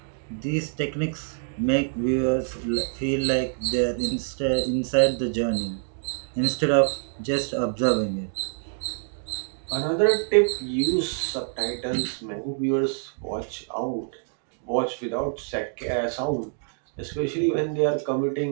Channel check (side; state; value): left; silent; 61 dB below the other